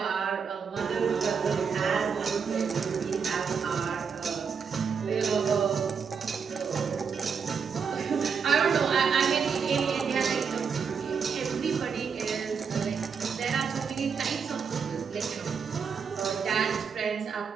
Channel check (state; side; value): quieter; left; 6.2 dB